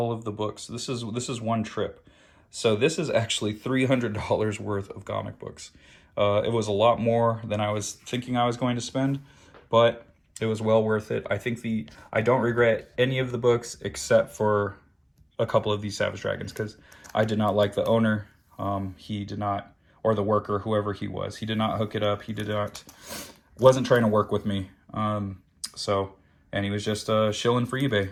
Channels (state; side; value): identical; both; correlation 1.00